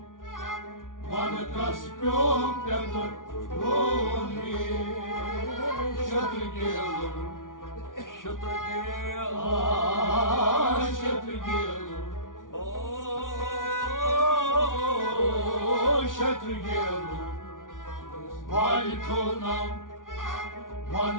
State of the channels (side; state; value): right; late; 0.88 ms